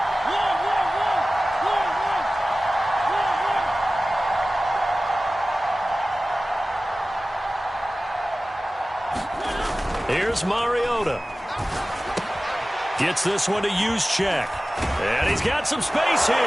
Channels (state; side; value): normal; both; correlation 0.97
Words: Here's Mariota. Gets this one to Juszczyk. And he's got some space here.